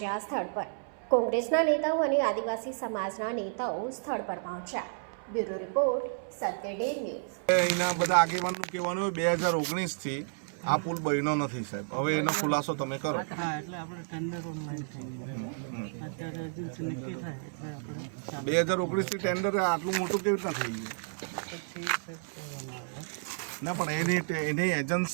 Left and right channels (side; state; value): left; silent; 57 dB below the other